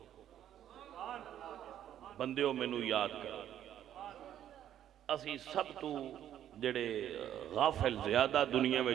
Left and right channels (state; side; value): quieter; left; 10.9 dB